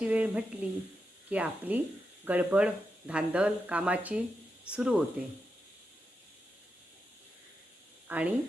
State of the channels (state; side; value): normal; both; correlation 0.87